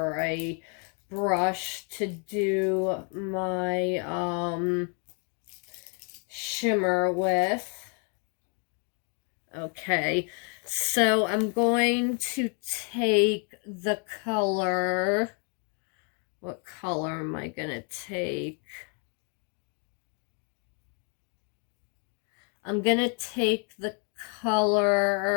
a brush to do my shimmer with. Okay, so I'm going to take the color. What color am I gonna take? I'm gonna take the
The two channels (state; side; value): quieter; right; 38.8 dB